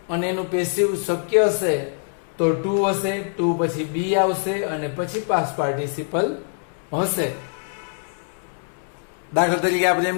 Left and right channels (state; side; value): silent; right; 63 dB below the other